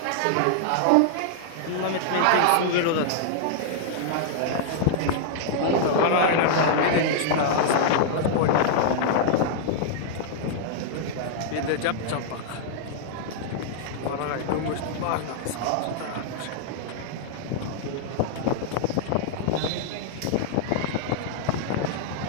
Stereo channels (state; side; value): different; both; correlation -0.01